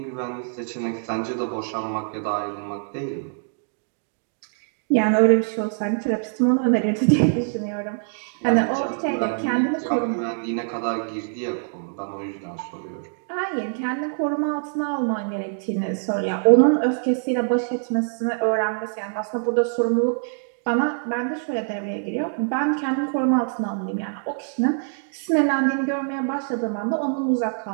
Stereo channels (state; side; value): silent; left; digital silence